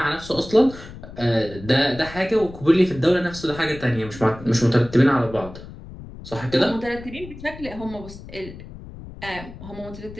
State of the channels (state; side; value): noise; left; rumble, 15 dB below the sound